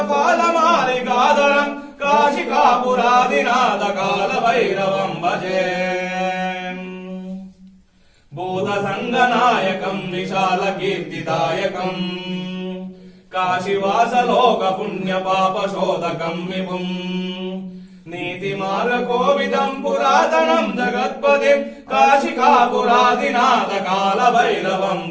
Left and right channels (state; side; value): identical; both; correlation 1.00